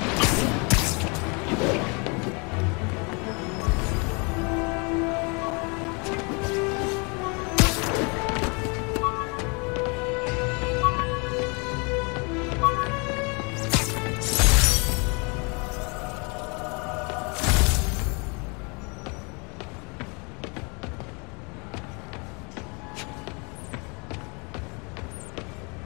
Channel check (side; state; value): right; quieter; 31.8 dB